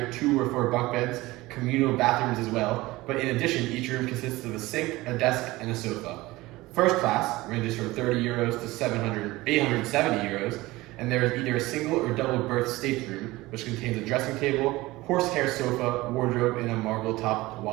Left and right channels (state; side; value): quieter; left; 19.6 dB